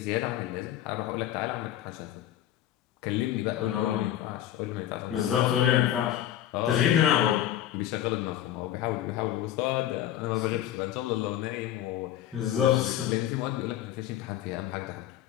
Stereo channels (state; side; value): quieter; right; 11.9 dB